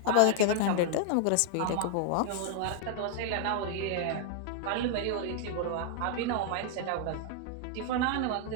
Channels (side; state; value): both; different; correlation 0.00